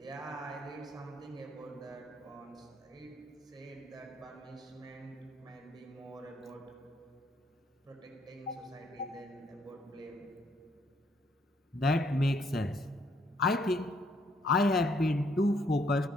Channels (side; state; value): both; normal; correlation 0.69